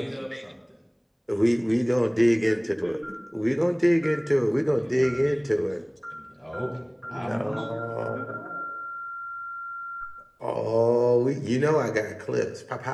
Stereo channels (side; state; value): both; identical; correlation 1.00